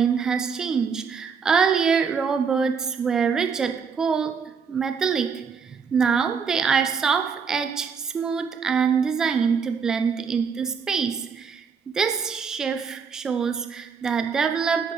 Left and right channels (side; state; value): left; quieter; 6.0 dB